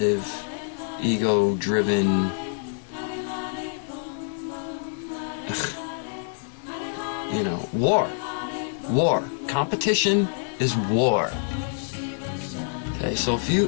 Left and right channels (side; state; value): right; silent; digital silence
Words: ego-driven, you know, war. Competition is war. Okay, so